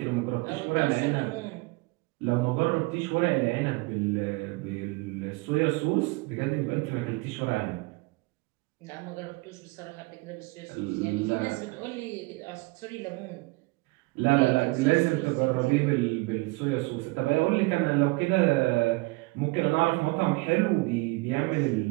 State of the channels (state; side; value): quieter; left; 24.8 dB